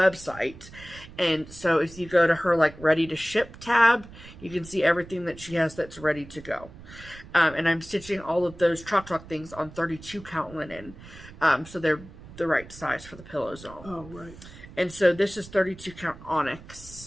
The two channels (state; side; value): noise; right; rumble, 18 dB below the sound